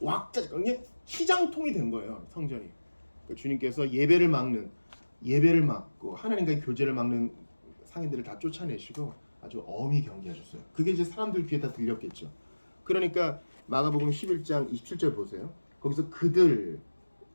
왁자 그냥 시장통이 된 거예요. 성전이. 그러니까 주님께서 예배를 막고 하나님과의 교제를 막는 상인들을 다 쫓아내시고 아주 엄히 경계하셨어요. 그게 이제 사람들 귀에 다 들렸겠죠. 그러니까 마가복음 11장 27절 보세요. 거기서 그들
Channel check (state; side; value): inverted; both; correlation -1.00